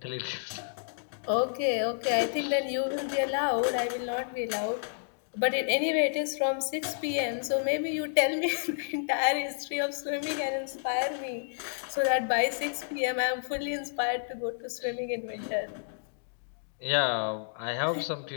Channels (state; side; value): silent; right; digital silence